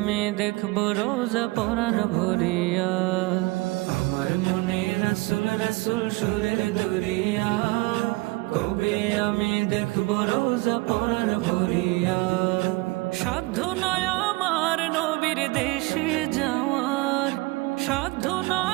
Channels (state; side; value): quieter; left; 23.4 dB